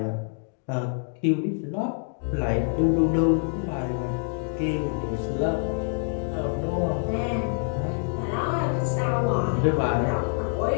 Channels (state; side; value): silent; right; 61 dB below the other